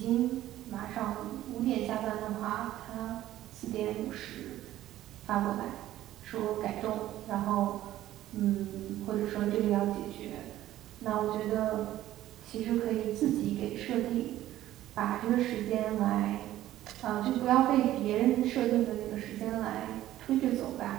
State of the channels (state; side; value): quieter; left; 13.9 dB